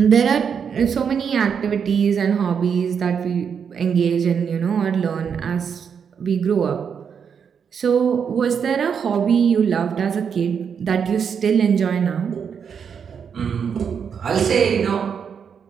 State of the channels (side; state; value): left; quieter; 7.0 dB